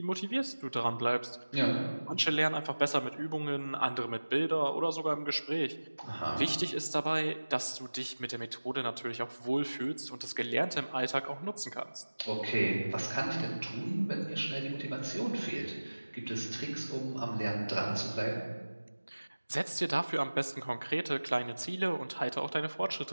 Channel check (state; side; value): inverted; both; correlation -1.00